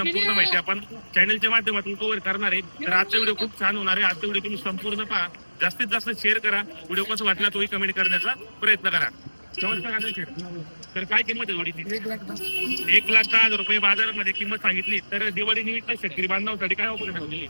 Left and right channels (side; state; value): both; inverted; correlation -1.00